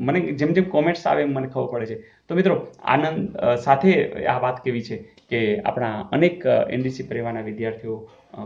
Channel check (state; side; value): identical; both; correlation 1.00